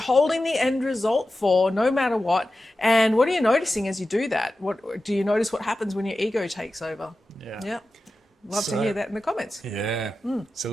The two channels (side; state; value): both; normal; correlation 0.93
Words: the end result for, no matter what? And what are you noticing as you do that? What do you notice? What happens when your ego takes over? Yeah. Love to hear that in the comments. Yeah. So